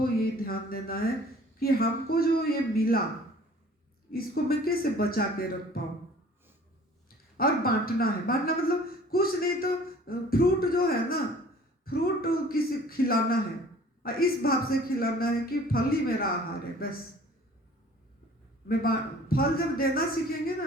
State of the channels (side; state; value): both; normal; correlation 0.50